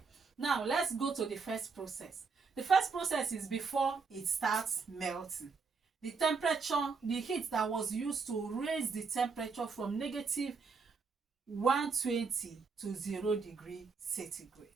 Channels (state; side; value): quieter; left; 4.9 dB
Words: now let's go to the first process. The first process is before it starts melting. The temperature, the heat that was used to raise the temperature from negative 120 to 0 degree centigrade.